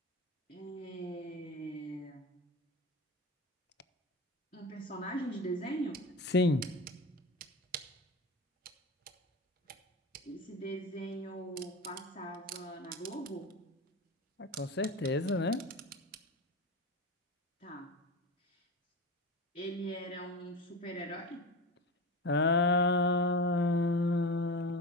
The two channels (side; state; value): both; normal; correlation 0.25